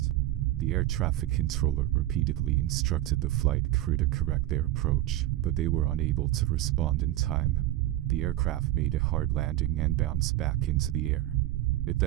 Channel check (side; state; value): left; quieter; 14.8 dB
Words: The air traffic controller repeatedly instructed the flight crew to correct their approach, but they were unable to respond in time. The aircraft made a hard landing and bounced back into the air. It